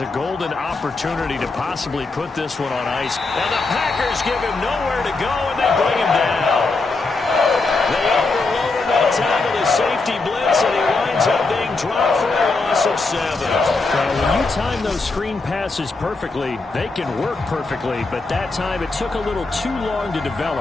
a golden opportunity to possibly put this one on ice. And the Packers give him nowhere to go, and they bring him down. They overloaded that time with a safety blitz, and he winds up being dropped for a loss of 7. Well, when you time those screen passes perfectly, they can work perfectly, but that time it took a little too long to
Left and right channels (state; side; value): quieter; right; 3.7 dB